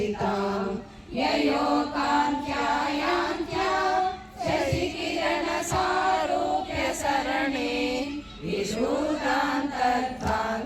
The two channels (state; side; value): identical; both; correlation 1.00